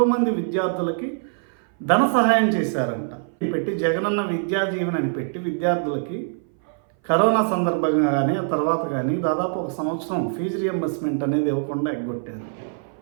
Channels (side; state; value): left; silent; 59 dB below the other